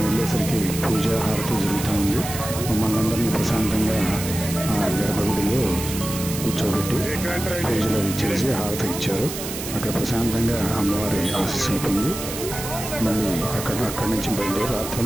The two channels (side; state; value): right; noise; hiss, 8 dB below the sound